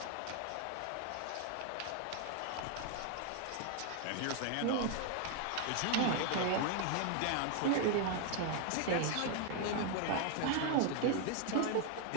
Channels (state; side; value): different; both; correlation 0.00